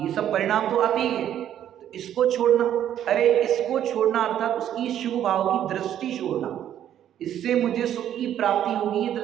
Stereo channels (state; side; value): quieter; left; 10.7 dB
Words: ये सब परिणाम तो आते ही है। तो इसको छोड़ना, अरे इसको छोड़ना अर्थात उसकी शुभ भाव की दृष्टि छोड़ना, इससे मुझे सुख की प्राप्ति होगी, ये